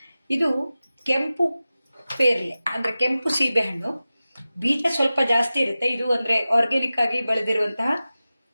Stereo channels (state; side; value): inverted; both; correlation -0.95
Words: ಇದು ಕೆಂಪು ಪೇರ್ಲೆ ಅಂದ್ರೆ ಕೆಂಪು ಸೀಬೆ ಹಣ್ಣು. ಬೀಜ ಸ್ವಲ್ಪ ಜಾಸ್ತಿ ಇರುತ್ತೆ. ಇದು ಅಂದ್ರೆ ಆರ್ಗ್ಯಾನಿಕ್ ಆಗಿ ಬೆಳೆದಿರುವಂತಹ